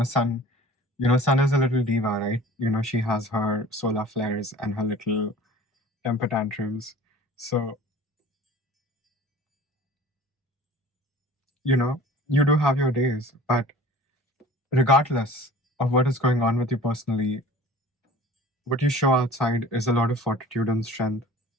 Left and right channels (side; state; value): both; normal; correlation 0.44